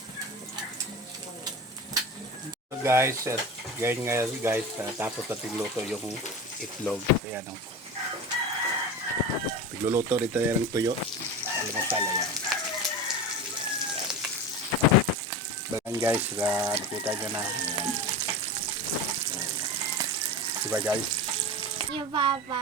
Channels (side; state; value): both; normal; correlation 0.28